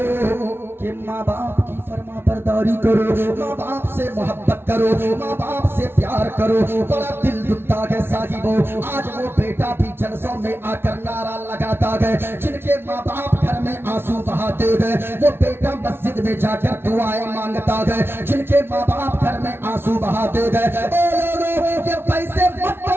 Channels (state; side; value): late; left; 0.11 ms